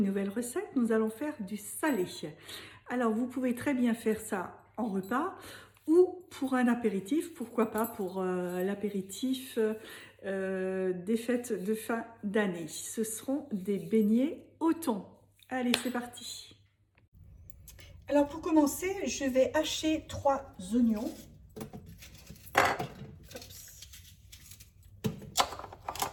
nouvelle recette. Nous allons faire du salé. Alors, vous pouvez très bien faire ça en repas ou pour un apéritif. Pourquoi pas pour l'apéritif des fêtes de fin d'année. Ce seront des beignets au thon. Allez, c'est parti. Alors, pour commencer, je vais hacher 3 oignons.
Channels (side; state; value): both; identical; correlation 1.00